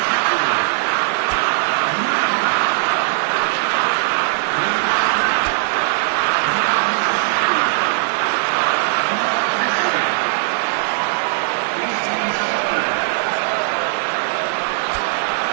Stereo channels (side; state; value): left; silent; digital silence